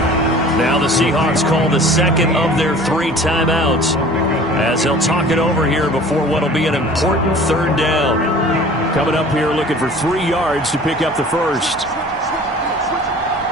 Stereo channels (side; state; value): both; normal; correlation 0.45